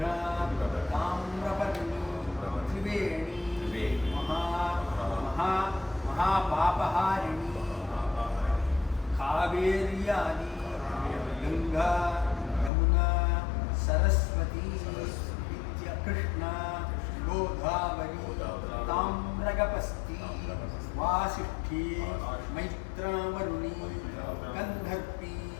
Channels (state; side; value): drops out; right; at 12.7 s